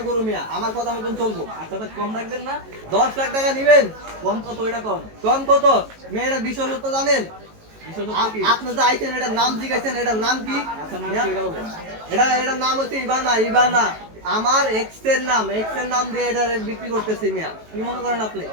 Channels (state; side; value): late; left; 18 ms